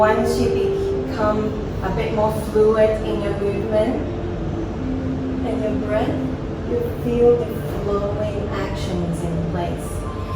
you become a bit more fluid in your movement and your breath, you feel the flowing actions in place.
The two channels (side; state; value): both; identical; correlation 1.00